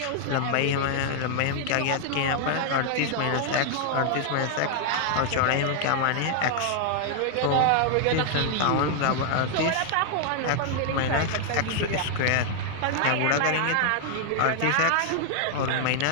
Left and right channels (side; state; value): both; different; correlation 0.00